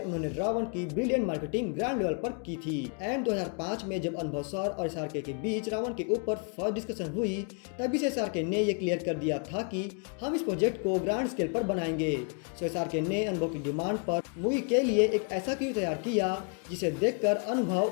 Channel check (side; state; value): right; quieter; 37.5 dB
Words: रावण की ब्रिलियंट मार्केटिंग ग्रैंड लेवल पर की थी। एंड 2005 में जब अनुभव सर और SRK के बीच रावण के ऊपर फर्स्ट डिस्कशन हुई, तभी से SRK ने यह क्लियर कर दिया था कि हम इस प्रोजेक्ट को ग्रैंड स्केल पर बनाएंगे। सो SRK ने अनुभव की डिमांड पर मूवी के लिए एक ऐसा क्रू तैयार किया जिसे देखकर